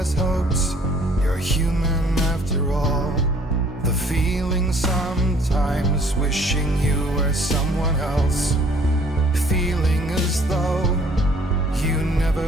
hopes. You're human after all. The feeling sometimes wishing you were someone else, feeling as though you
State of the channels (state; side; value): normal; both; correlation 0.57